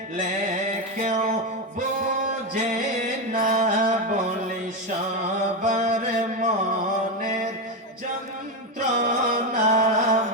কেউ বোঝে না বলে সবার মনের যন্ত্রণা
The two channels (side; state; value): both; normal; correlation 0.11